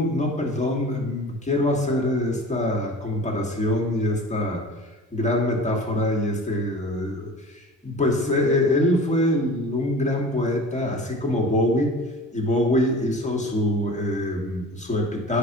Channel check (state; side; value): normal; both; correlation 0.39